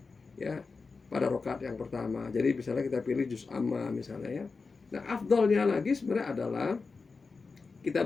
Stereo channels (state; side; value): quieter; right; 4.4 dB